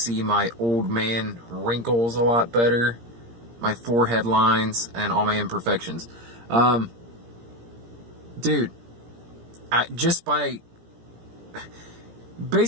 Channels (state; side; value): late; left; 17 ms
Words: my old man wrinkles a lot better, my forehead lines, and all my imperfections. Dude,